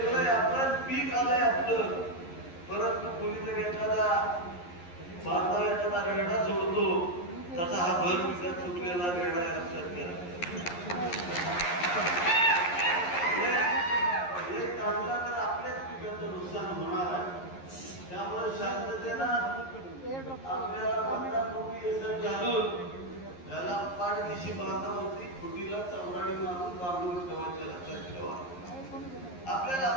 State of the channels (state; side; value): late; right; 11 ms